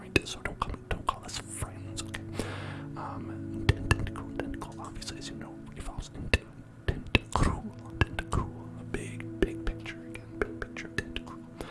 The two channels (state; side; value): identical; both; correlation 1.00